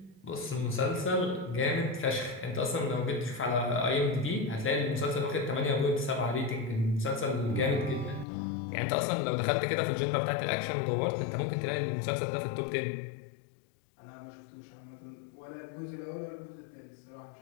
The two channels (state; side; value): drops out; right; at 8.2 s